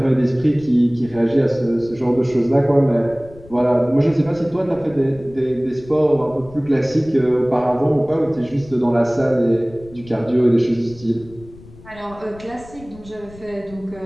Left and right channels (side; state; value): left; noise; rumble, 21 dB below the sound